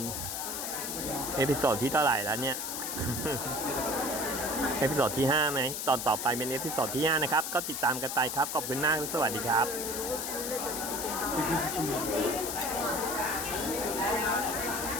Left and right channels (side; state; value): left; noise; hiss, 4 dB below the sound